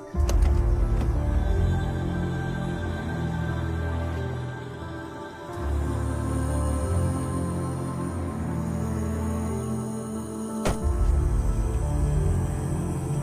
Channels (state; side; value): identical; both; correlation 1.00